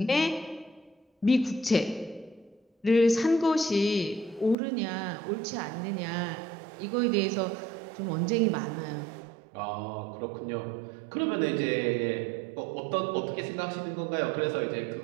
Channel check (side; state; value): left; drops out; at 4.5 s